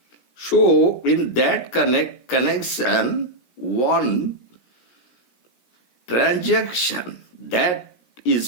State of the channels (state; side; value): late; right; 17 ms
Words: So, in that connection, one transaction that is